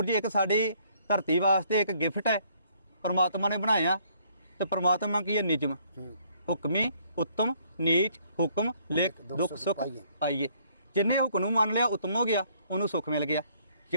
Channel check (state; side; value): inverted; both; correlation -0.65